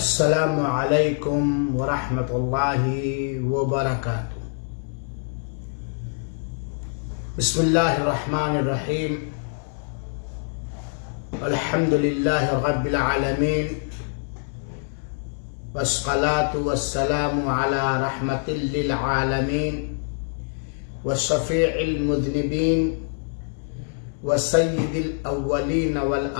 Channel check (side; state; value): right; silent; 62 dB below the other